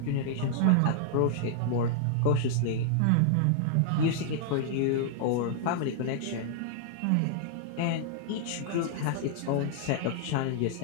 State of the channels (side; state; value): both; different; correlation -0.01